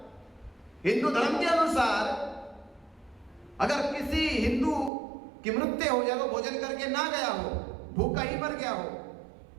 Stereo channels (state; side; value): drops out; left; at 4.9 s